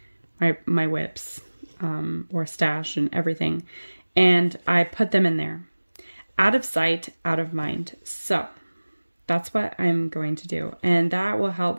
whips, or stash and everything. And I put them in there, out of sight, out of mind. So that's what I'm going to do. And that will help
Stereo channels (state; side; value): inverted; both; correlation -1.00